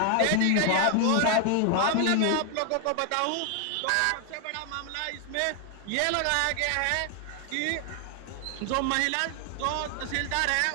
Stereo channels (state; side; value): different; both; correlation 0.00